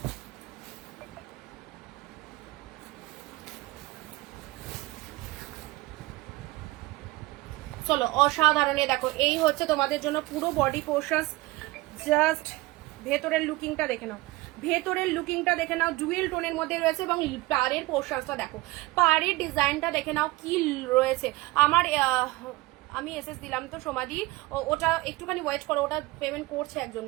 চলো অসাধারণ। দেখো এই হচ্ছে তোমাদের জন্য পুরো বডি পোর্শন, জাস্ট ভেতরের লুকিংটা দেখে নাও, ভেতরের লুকিংটা দেখে নাও, ডুয়েল টোনের মধ্যে রয়েছে। এবং পাড়ের পোর্শনটা দেখো, পাড়ের ডিজাইনটা দেখে নাও কি রয়েছে। আমার আমি এসএস দিলাম তো সমাধি, ওটা একটুখানি ওয়েট করো, ওটা পেমেন্ট করছে একজন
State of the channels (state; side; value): quieter; left; 20.6 dB